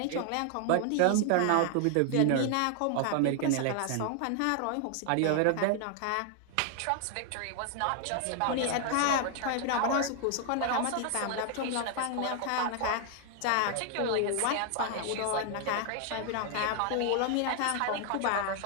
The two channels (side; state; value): both; different; correlation 0.00